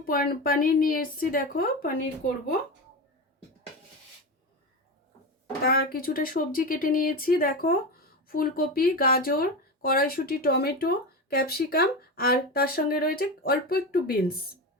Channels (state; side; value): normal; both; correlation 0.21